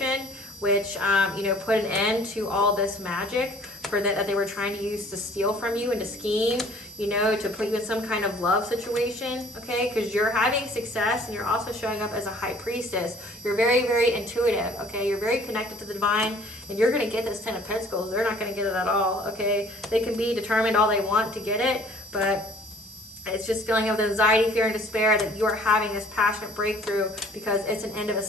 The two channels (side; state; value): right; noise; hiss, 23 dB below the sound